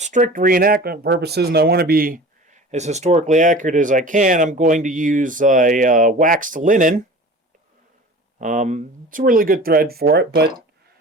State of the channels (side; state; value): both; normal; correlation 0.39